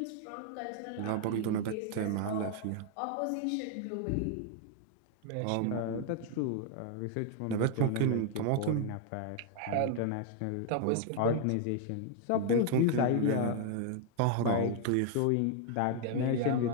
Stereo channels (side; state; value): both; different; correlation 0.00